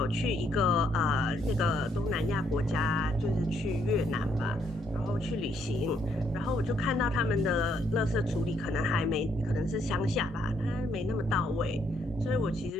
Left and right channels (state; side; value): normal; both; correlation 0.72